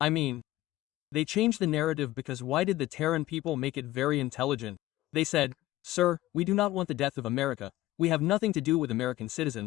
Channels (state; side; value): quieter; right; 16.3 dB